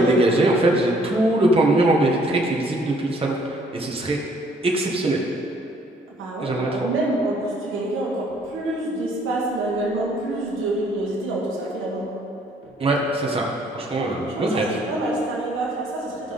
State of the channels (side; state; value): both; normal; correlation 0.62